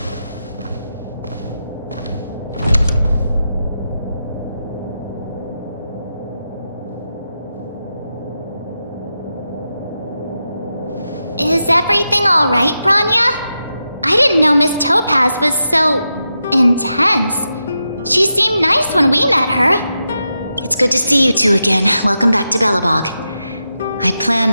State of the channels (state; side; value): inverted; both; correlation -0.88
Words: Is everything alright, Branya? I didn't know Miss Topaz was so... intense. She seemed nice when we met her. It's good to see you two again. Welcome back to Belobog. I'd